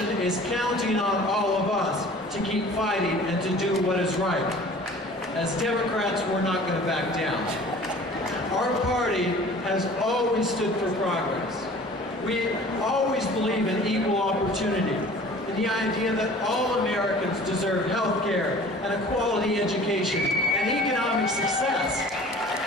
is counting on all of us to keep fighting and to do what is right. As Democrats, we're not going to back down. Our party has always stood for progress. We always believe in equal opportunity, in the idea that all Americans deserve health care and a quality education and economic success.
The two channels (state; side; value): normal; both; correlation 0.46